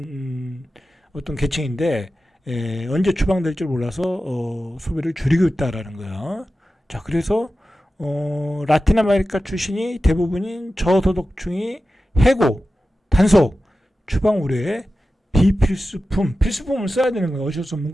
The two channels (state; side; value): normal; both; correlation 0.94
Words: 어떤 계층인데 언제 추방될 줄 몰라서 소비를 줄이고 있다라는 거야. 자, 그래서 라틴 아메리카 출신이 대부분인 저소득층이 해고, 단속, 추방 우려에 필수품을 써야 되는 거야. 어쩔 수 없는